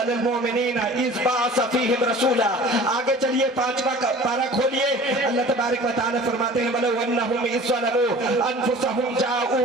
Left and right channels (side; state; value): both; normal; correlation 0.43